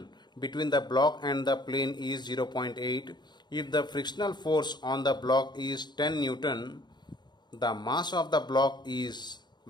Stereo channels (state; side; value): late; right; 0.21 ms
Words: between the block and the plane is 0.8. If the frictional force on the block is 10 Newton, the mass of the block is,